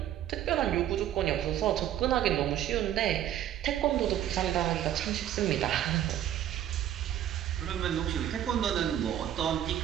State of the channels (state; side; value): quieter; left; 11.4 dB